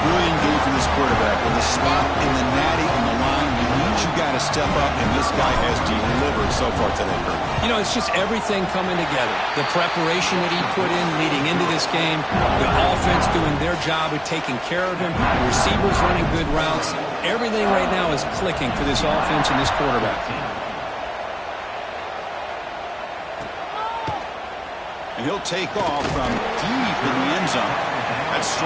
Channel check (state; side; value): identical; both; correlation 1.00